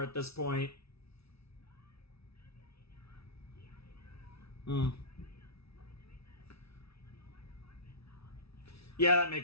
at this point. Yeah, that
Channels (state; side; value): late; right; 0.77 ms